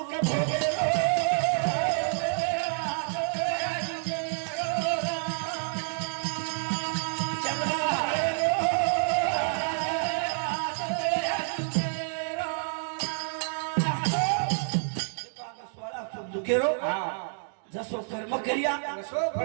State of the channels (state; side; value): silent; left; digital silence